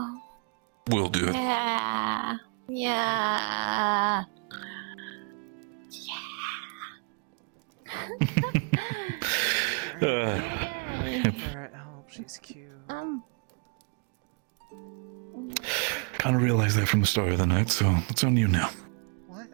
We'll do it. Yeah. Yeah. Do it again. Alright, I hope she's cute. Kind of realized that from the start of the night, so it's on you now.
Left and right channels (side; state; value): left; quieter; 38.3 dB